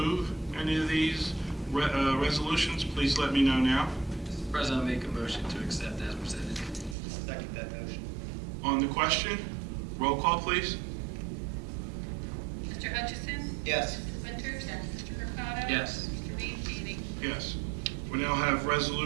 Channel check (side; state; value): left; drops out; at 7.0 s